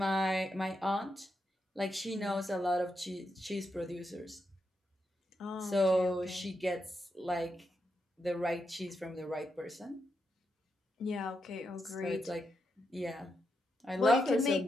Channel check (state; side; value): normal; both; correlation 0.84